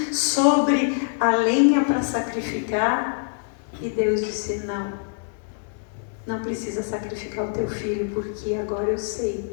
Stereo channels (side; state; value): right; silent; digital silence